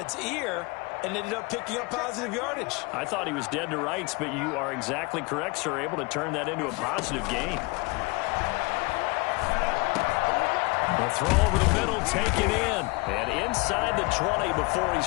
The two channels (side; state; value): right; quieter; 26.9 dB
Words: ear and ended up picking up positive yardage. I thought he was dead to rights, but you are exactly correct, sir, able to turn that into a positive gain. A throw over the middle, taken in, and inside the 20 before